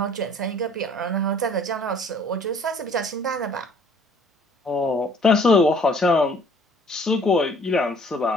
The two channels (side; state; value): both; normal; correlation 0.56